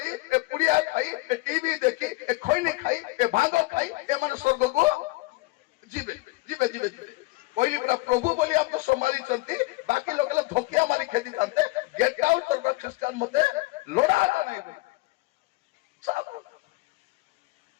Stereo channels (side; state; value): right; quieter; 22.7 dB